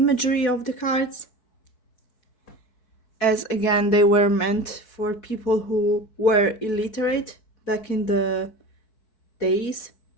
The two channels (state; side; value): late; right; 4.6 ms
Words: of the cards, as again they were meant for people who were illiterate back in the days.